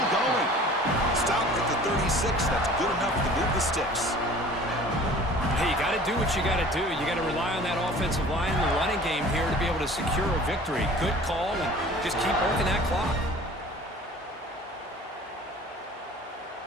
going. Stopped at the 36. That's good enough to move the sticks. Hey, you got to do what you got to do. You got to rely on that offensive line and the running game here to be able to secure a victory. Good call, and just keep working that clock.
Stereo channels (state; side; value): normal; both; correlation 0.46